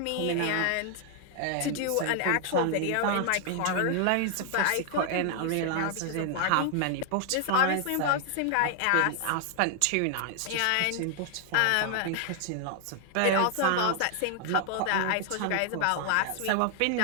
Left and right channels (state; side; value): different; both; correlation 0.00